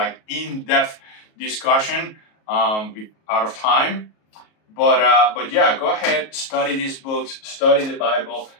in-depth discussion out of time. But yeah, go ahead, study these books, study the Bible.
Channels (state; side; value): late; right; 37 ms